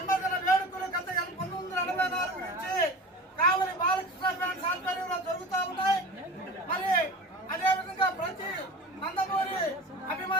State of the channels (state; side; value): normal; both; correlation 0.35